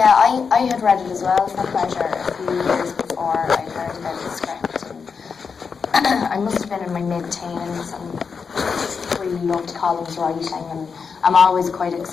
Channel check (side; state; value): right; quieter; 5.7 dB